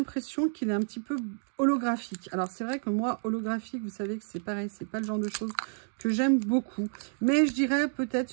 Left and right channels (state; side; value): silent; left; digital silence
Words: qu'il est un petit peu holographique. Alors, c'est vrai que moi, holographique, vous savez que c'est pareil, c'est pas le genre de choses que j'aime beaucoup. Mais je dirais peut-être